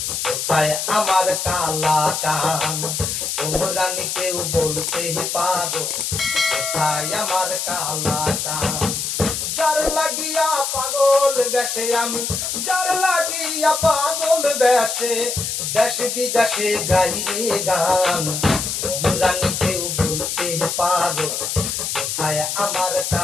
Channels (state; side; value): noise; left; hiss, 2 dB below the sound